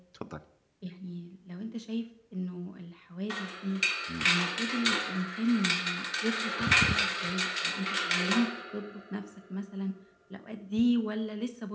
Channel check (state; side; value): identical; both; correlation 1.00